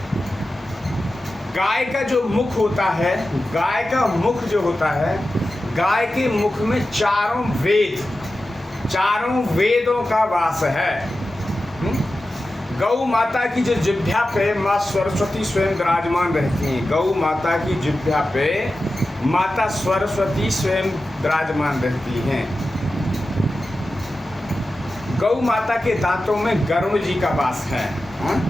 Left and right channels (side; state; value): both; normal; correlation 0.93